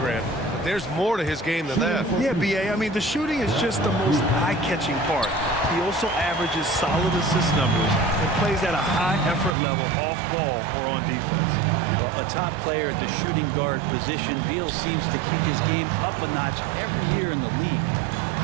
but there's more to his game than that. Yeah, B.A., I mean, the shooting is just the most eye-catching part. He also averages solid assist numbers and plays at a high effort level off ball or on defense. Well, a top player at the shooting guard position, Beal seems to kick his game up a notch every year in the league.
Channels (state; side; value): drops out; left; at 9.6 s